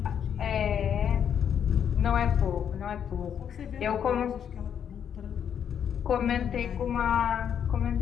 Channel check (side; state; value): right; quieter; 8.5 dB